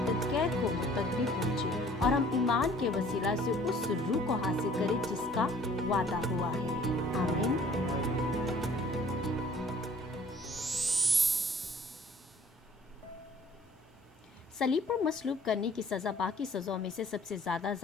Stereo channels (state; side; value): normal; both; correlation 0.54